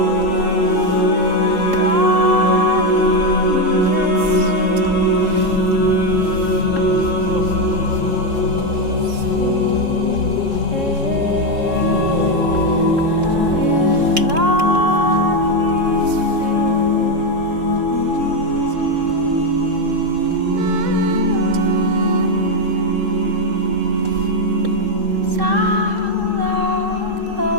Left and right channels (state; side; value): late; left; 3.7 ms